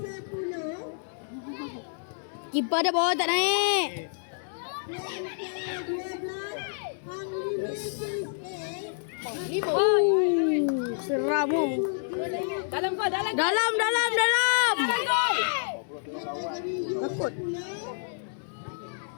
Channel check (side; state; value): right; silent; digital silence